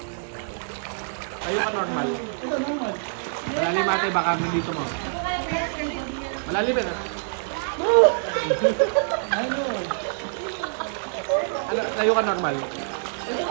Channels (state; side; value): silent; left; digital silence